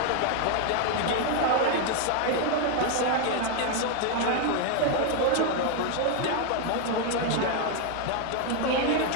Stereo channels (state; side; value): different; both; correlation 0.01